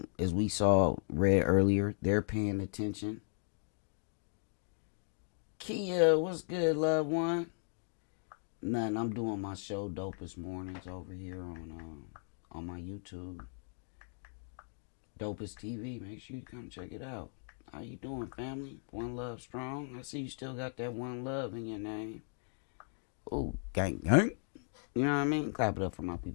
as we read earlier, they're paying attention. Kia, what's good, loved one? Nothing. I'm doing my show Dopest Mornings over here on my YouTube. Dopest TV. Make sure you come check it out. How you doing, family? One love strong. I see you still got that one love in your name. Ooh, gang, gang. You know what I mean? Clap it up for my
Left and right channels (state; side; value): silent; right; 53 dB below the other